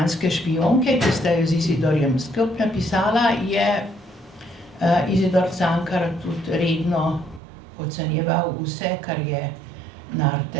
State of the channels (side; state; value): left; drops out; at 7.4 s